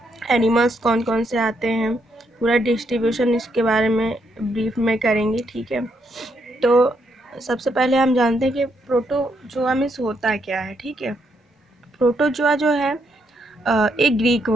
एनिमल्स कौन कौन से आते हैं, पूरा डिस्ट्रीब्यूशन इसके बारे में ब्रीफ में करेंगे, ठीक है। तो सबसे पहले हम जानते हैं कि प्रोटोजोआ मीन्स होता क्या है, ठीक है। प्रोटोजोआ जो है एक ग्रीक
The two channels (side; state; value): both; normal; correlation 0.76